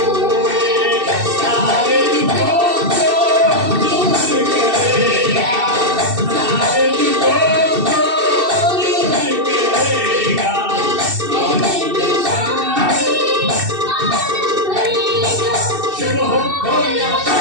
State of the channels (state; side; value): late; left; 2.6 ms